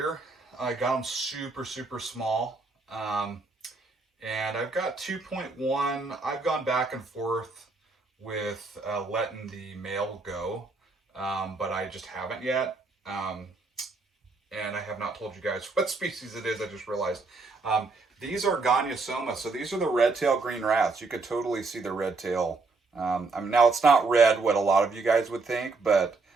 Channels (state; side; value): quieter; left; 3.8 dB